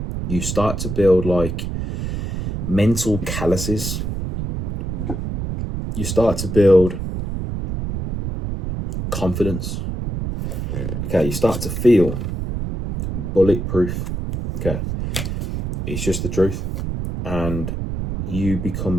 you start to build like mental calluses. You start to build confidence. Okay, you start to feel bulletproof. Okay, it's just the truth. And you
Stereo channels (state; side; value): noise; right; rumble, 4 dB below the sound